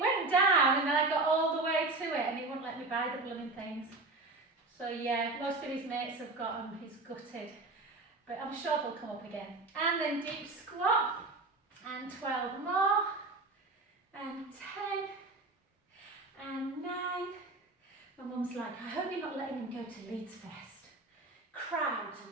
down and then I got all the way to it and he wouldn't let me buy the blooming things. So yeah, most of his mates have got them, he's gutted. But I'm sure they'll come up again. And then deep squat, and 12 more, and 10, and 9. My mum's like, I hope you're not letting him go to Leeds Fest. Crowds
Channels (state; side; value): quieter; left; 3.3 dB